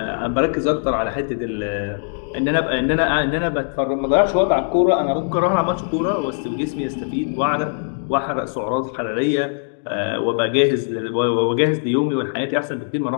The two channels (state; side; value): silent; right; digital silence